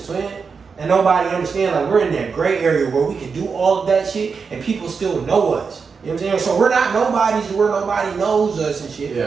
twin. And nobody understands, like, we're in that gray area where we can do all of that shit and people still know us. You know what I'm saying? So we're not nobodies where nobody knows us and shit.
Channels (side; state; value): left; quieter; 5.4 dB